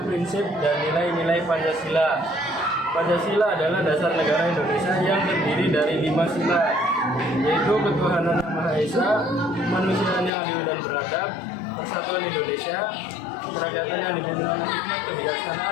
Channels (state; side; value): drops out; right; at 10.3 s